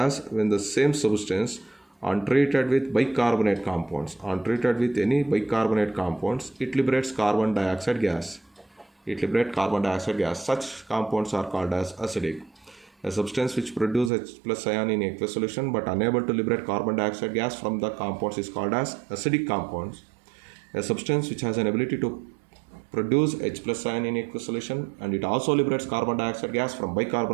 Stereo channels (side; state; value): left; drops out; at 14.1 s